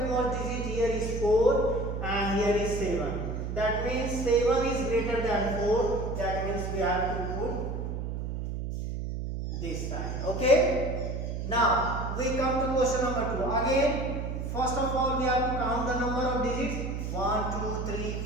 digit here is 4, and here is 7. That means 7 is greater than 4. That means we have to put this sign. Okay. Now we come to question number 2. Again, first of all we have to count the number of digits. 1, 2, 3,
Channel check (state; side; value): noise; right; hum, 4 dB below the sound